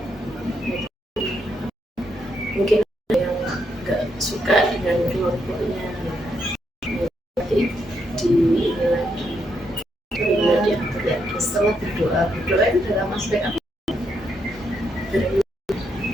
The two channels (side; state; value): both; normal; correlation 0.78